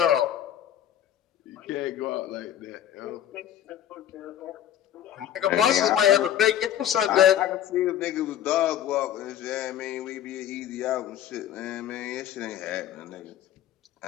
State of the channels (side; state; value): right; quieter; 10.9 dB